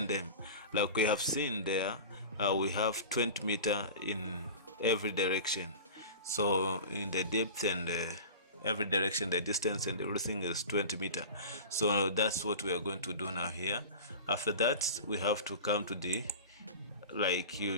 them like we have seen there. We have 20 meter in every direction, so in the depth and every direction, the distance and everything is 20 meter. So that's what we are going to do now here. After that, we have to come to the, like,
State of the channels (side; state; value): both; inverted; correlation -0.33